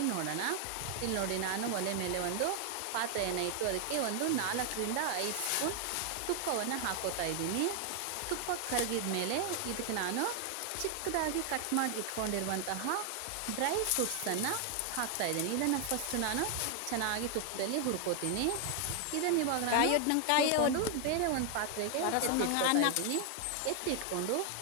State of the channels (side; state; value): both; different; correlation 0.00